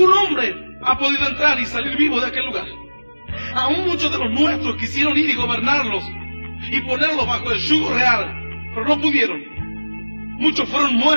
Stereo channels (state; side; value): inverted; both; correlation -1.00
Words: hombre ha podido entrar y salir vivo de aquel lugar. Aún muchos de los nuestros quisieron ir y gobernarlos y ponerlos bajo el yugo real, pero no pudieron. Muchos fueron